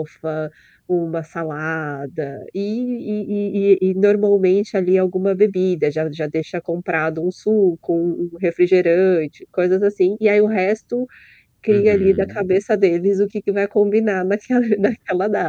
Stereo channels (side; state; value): both; identical; correlation 1.00